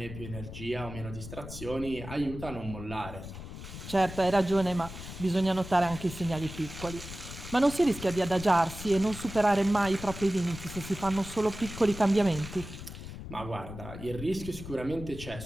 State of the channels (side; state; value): left; noise; rumble, 11 dB below the sound